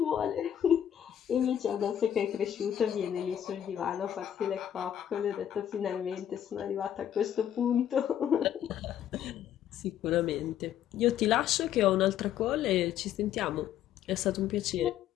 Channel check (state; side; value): quieter; right; 10.3 dB